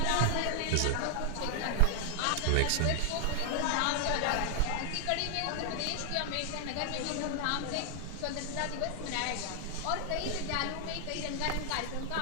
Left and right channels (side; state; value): both; different; correlation 0.00